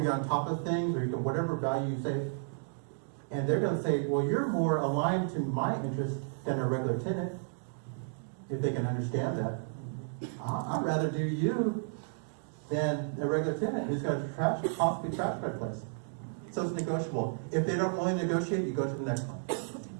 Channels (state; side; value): silent; left; digital silence